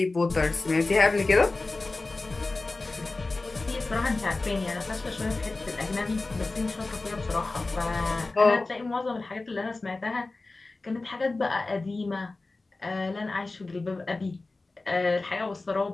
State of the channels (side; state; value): right; quieter; 3.3 dB